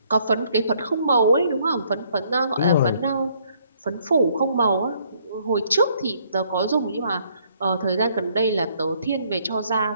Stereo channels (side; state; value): both; inverted; correlation -0.66